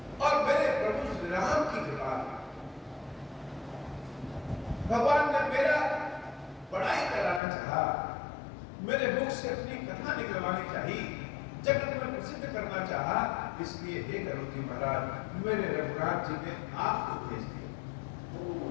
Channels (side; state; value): right; drops out; at 7.4 s